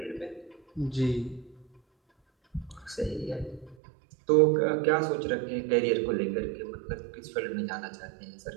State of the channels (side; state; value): left; drops out; at 3.8 s